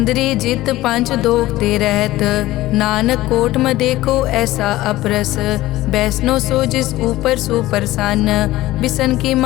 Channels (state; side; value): quieter; right; 16.8 dB